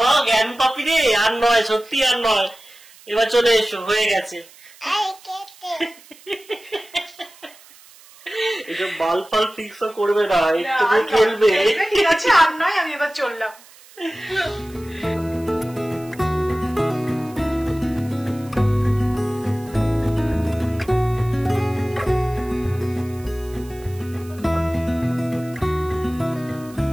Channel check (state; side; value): noise; right; hiss, 23 dB below the sound